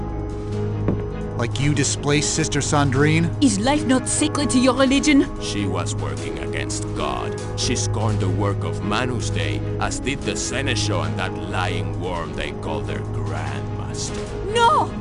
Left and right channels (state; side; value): identical; both; correlation 1.00